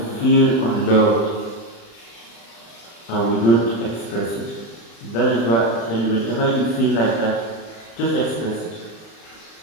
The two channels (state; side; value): late; right; 35 ms